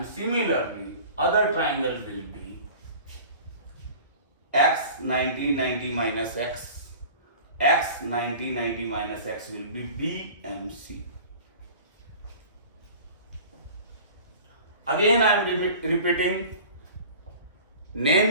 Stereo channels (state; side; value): inverted; both; correlation -0.41